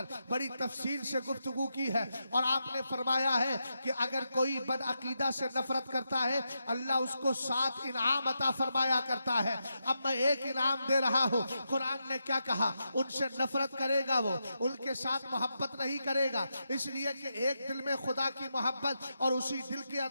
बड़ी तफसील से गुफ्तगू की है और आपने फरमाया है कि अगर कोई बदअकीदा से नफरत करता है अल्लाह उसको 7 इनाम अता फरमाया करता है। अब मैं एक इनाम दे रहा हूं। कुरान ने क्या कहा, उनसे नफरत करेगा वो, उनके साथ मोहब्बत नहीं करेगा, इसलिए कि एक दिल में खुदा की मोहब्बत और उसी दिल के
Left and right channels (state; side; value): inverted; both; correlation -0.86